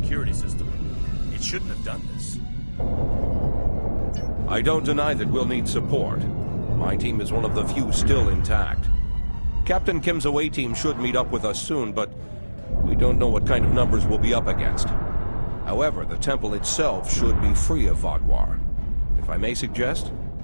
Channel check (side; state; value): both; inverted; correlation -1.00